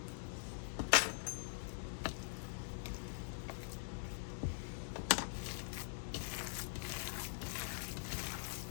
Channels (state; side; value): silent; right; digital silence